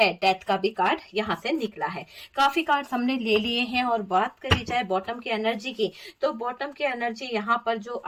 डेथ का भी कार्ड यहाँ से निकला है। काफी कार्ड हमने ले लिए हैं। और बात करी जाए बॉटम की एनर्जी की, तो बॉटम की एनर्जी यहाँ पर जो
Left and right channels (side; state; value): both; identical; correlation 1.00